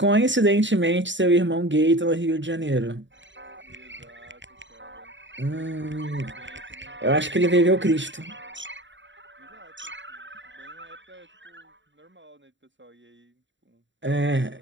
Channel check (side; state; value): left; late; 0.54 ms